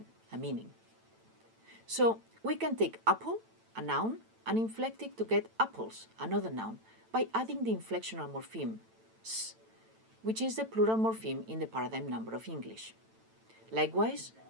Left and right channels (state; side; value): late; left; 9.0 ms